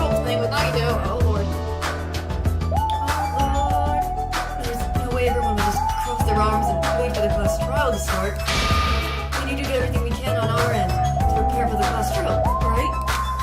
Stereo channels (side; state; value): both; identical; correlation 1.00